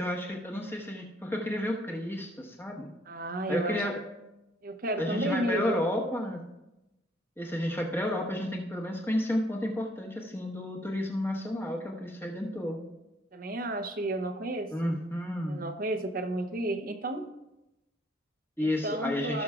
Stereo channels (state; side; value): normal; both; correlation 0.65